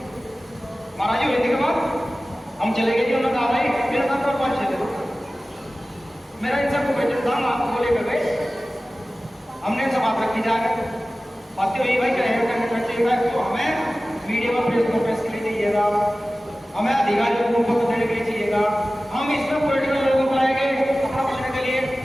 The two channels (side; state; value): both; normal; correlation 0.96